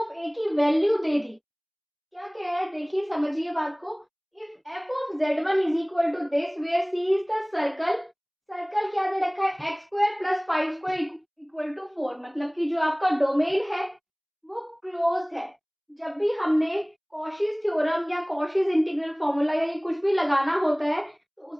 ऑफ ए की वैल्यू दे दी. क्या कह रहा है, देखिए समझिए बात को. If f of z one is equal to this where C is the circle. Circle क्या दे रखा है, x square plus five square equal to 4. मतलब कि जो आपका डोमेन है वो क्लोज्ड है. जब भी हमने कॉशीज थ्योरम या कॉशीज इंटीग्रल फॉर्मूला या ये कुछ भी लगाना होता है तो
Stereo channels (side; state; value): both; identical; correlation 1.00